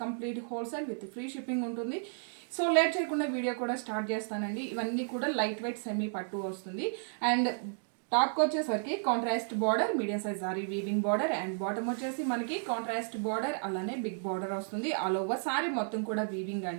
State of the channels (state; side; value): silent; left; digital silence